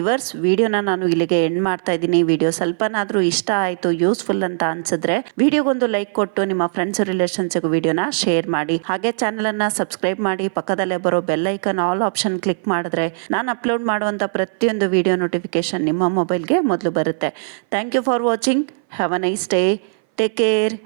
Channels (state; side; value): silent; left; 59 dB below the other